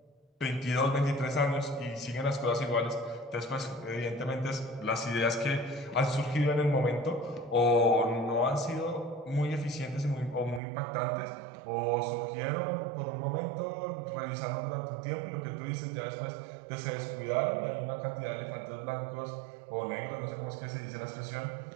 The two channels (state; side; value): drops out; left; at 10.6 s